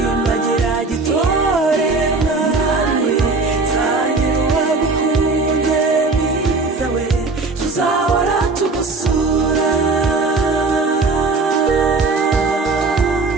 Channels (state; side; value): quieter; left; 3.8 dB